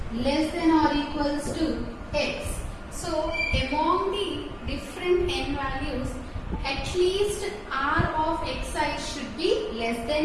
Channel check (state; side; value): identical; both; correlation 1.00